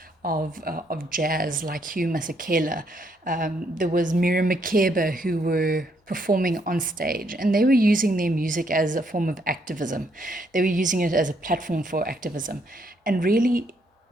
of jazz like Hugh Masekela. There was Miriam Makeba who were performing on stage, and they were using their music as a form of activism. They were using it as a platform for activism, and really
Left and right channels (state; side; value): normal; both; correlation 0.72